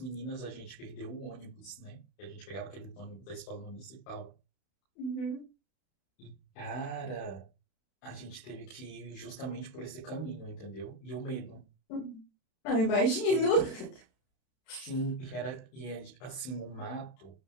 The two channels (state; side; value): late; right; 32 ms